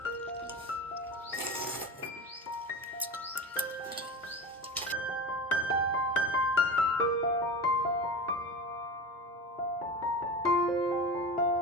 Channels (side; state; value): both; normal; correlation 0.27